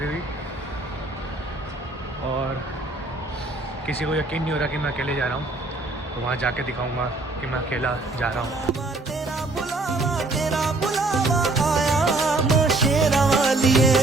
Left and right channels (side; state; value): left; quieter; 3.1 dB